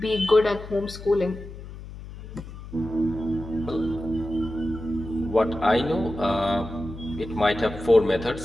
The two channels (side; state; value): left; noise; hum, 13 dB below the sound